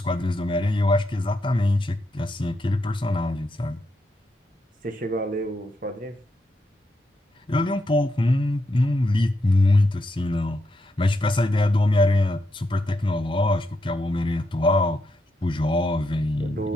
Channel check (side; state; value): both; normal; correlation 0.82